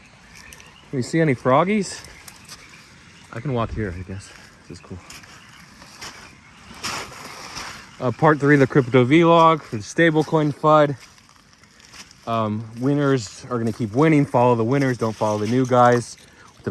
Can you see any froggies? I can walk here, I guess. This is cool. Part 3 of the crypto vlog for the stablecoin FUD. Winners are going to keep winning. Follow the winners. Don't follow the new guys with an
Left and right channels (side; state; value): both; identical; correlation 1.00